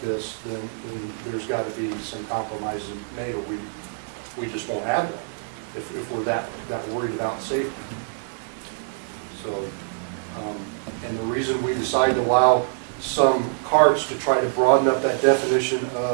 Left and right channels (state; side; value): silent; left; digital silence